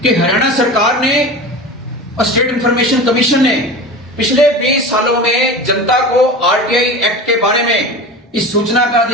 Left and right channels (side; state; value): both; normal; correlation 0.31